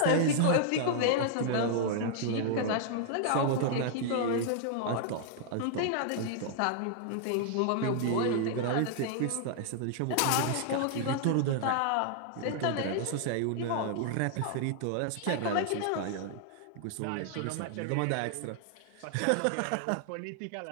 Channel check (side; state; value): both; different; correlation -0.01